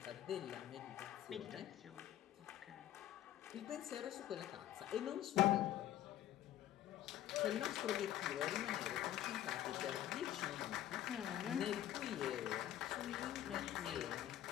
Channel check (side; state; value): right; quieter; 12.6 dB